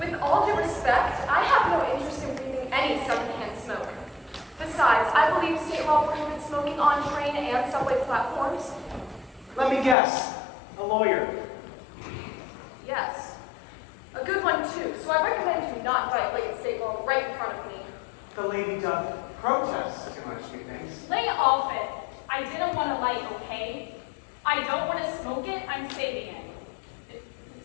all due respect, I have no interest in breathing any secondhand smoke. Besides, I believe state law prohibits smoking on train and subway platforms. Let me guess. A lawyer. Yes. A good one, too, so I recommend you not violate state law right in front of me. The lady doth protest too much, methinks. Lay off it. I didn't want to light, okay? I don't want to smoke it. I'm saving it.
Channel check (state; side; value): drops out; right; at 10.0 s